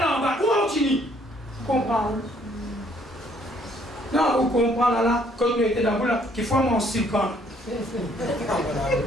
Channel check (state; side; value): normal; both; correlation 0.64